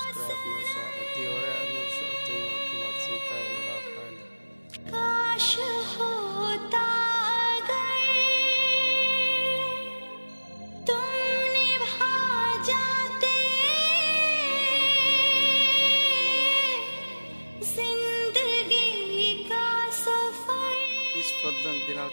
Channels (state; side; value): inverted; both; correlation -1.00